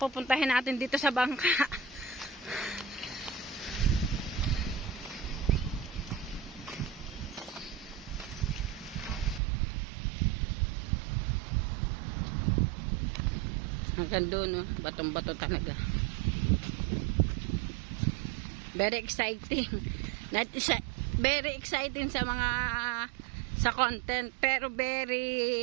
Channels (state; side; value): drops out; left; at 9.4 s